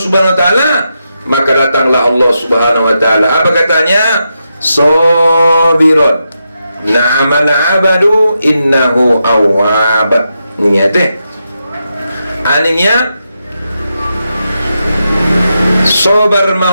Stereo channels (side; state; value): both; inverted; correlation -0.86